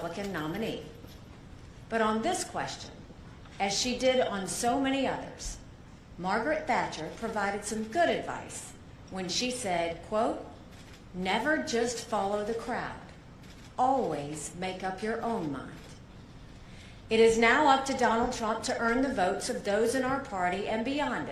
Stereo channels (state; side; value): identical; both; correlation 1.00